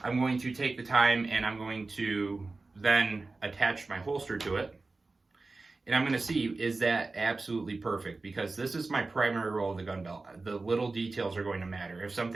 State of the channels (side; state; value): left; quieter; 3.6 dB